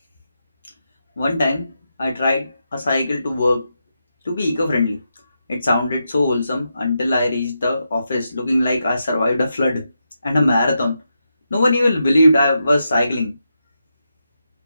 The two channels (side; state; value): both; inverted; correlation -0.85